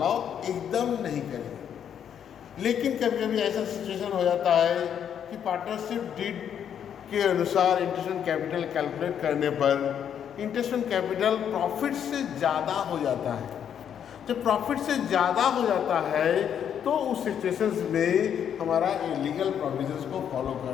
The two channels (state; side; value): quieter; right; 8.8 dB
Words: एकदम नहीं करेंगे। लेकिन कभी कभी ऐसा सिचुएशन हो जाता है कि पार्टनरशिप डीड के अनुसार इंटरेस्ट ऑन कैपिटल कैलकुलेट करने पर इंटरेस्ट ऑन कैपिटल प्रॉफिट से ज़्यादा हो जाता है। जब प्रॉफिट से ज़्यादा हो जाता है तो उस सिचुएशंस में हमारा इलीगल प्रोविजंस को फॉलो